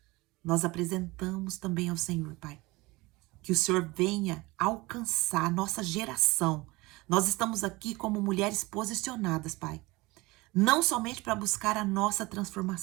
Nós apresentamos também ao Senhor, Pai, que o Senhor venha alcançar a nossa geração. Nós estamos aqui como mulheres posicionadas, Pai, não somente para buscar a nossa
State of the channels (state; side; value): quieter; left; 22.3 dB